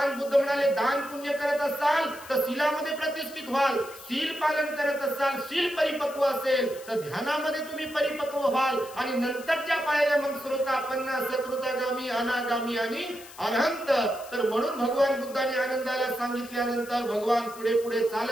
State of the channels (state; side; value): noise; left; hiss, 18 dB below the sound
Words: बुद्ध म्हणाले, दान पुण्य करत असाल तर शीलामध्ये प्रतिष्ठित व्हाल, शील पालन करत असाल, शील परिपक्व असेल तर ध्यानामध्ये तुम्ही परिपक्व व्हाल. आणि नंतरच्या पायऱ्या मग श्रोतापन्न, सकृतगामी, अनागामी आणि अरहंत. तर म्हणून भगवान बुद्धाने आनंदाला सांगितल्यानंतर भगवान पुढे पुढे